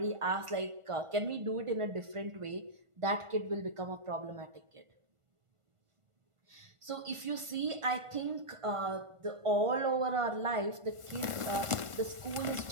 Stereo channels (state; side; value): late; left; 1.5 ms